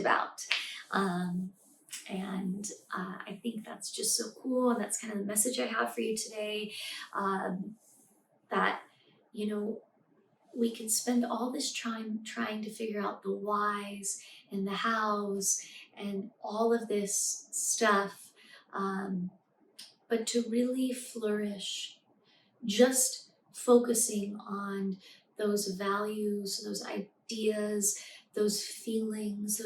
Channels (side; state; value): both; identical; correlation 1.00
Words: And I think that's just so cool, and that's kind of the message I have for you today, that we can spend all this time trying to figure out the whys and the hows and all of this stuff, but to really flourish, just focusing on those values, those ideas, those feelings,